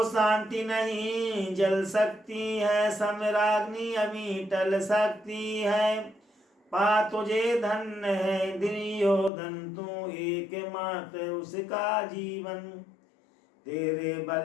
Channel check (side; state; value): right; drops out; at 9.3 s